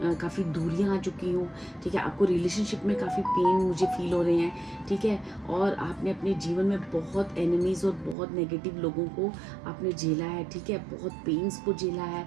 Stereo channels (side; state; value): left; drops out; at 8.2 s